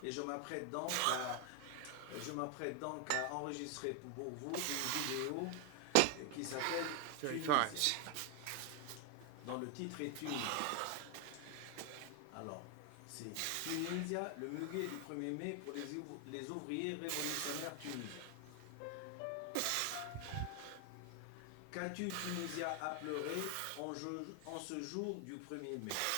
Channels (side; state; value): both; different; correlation 0.00